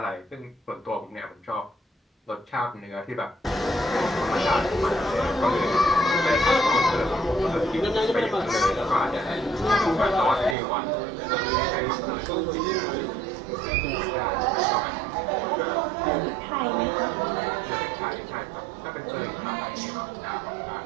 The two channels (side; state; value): left; drops out; at 10.6 s